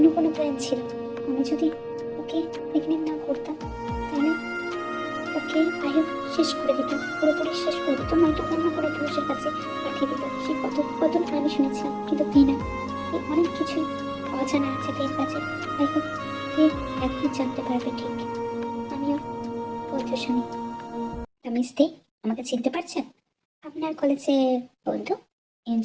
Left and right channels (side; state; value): both; identical; correlation 1.00